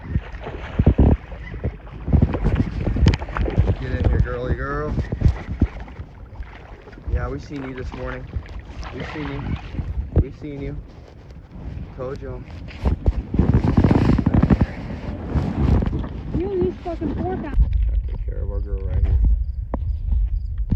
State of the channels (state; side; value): identical; both; correlation 1.00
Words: Get in here, girly girl. Yeah, we seen you this morning. We've seen you. We've seen you. Told y'all. You use fucking fork out. Take care of our girl right here.